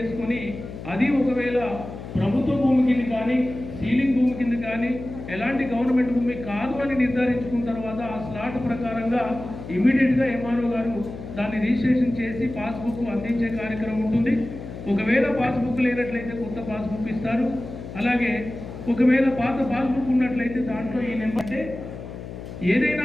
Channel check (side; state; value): left; noise; hum, 11 dB below the sound